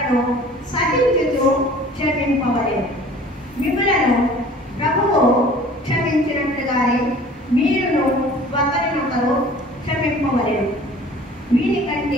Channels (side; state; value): both; normal; correlation 0.48